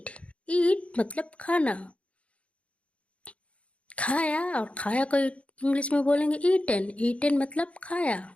ईट मतलब खाना, खाया। और खाया को इंग्लिश में बोलेंगे ईटन, ईटन मतलब खाया।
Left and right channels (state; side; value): late; right; 0.063 ms